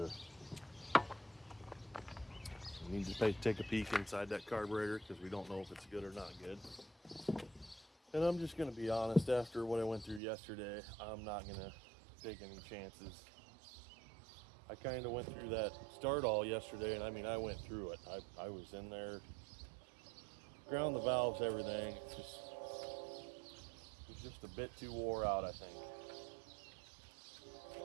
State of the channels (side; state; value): left; drops out; at 10.2 s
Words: We need to take a peek inside that carburetor because we don't know if it's good or not good. And I'm just going to be honest, after what I went through yesterday, I'm not going to take any chances. I kind of went through that start all yesterday, and I mean, I went through it. I was in there, ground the valves, everything. It was just a bit too wore out, I think.